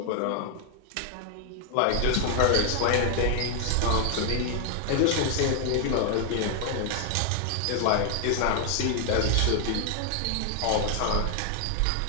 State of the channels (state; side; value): different; both; correlation 0.00